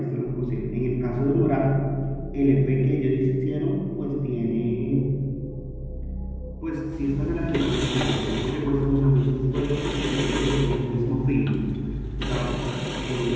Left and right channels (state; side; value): identical; both; correlation 1.00